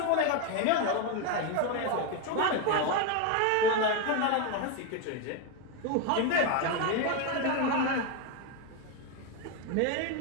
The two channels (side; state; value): both; different; correlation 0.02